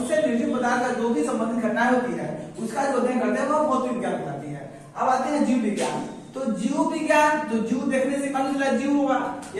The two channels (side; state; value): both; identical; correlation 1.00